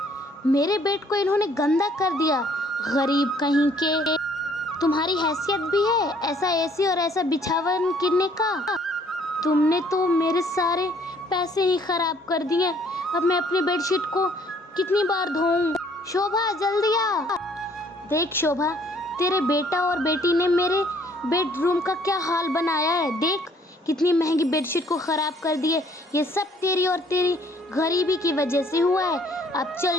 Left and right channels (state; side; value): normal; both; correlation 0.61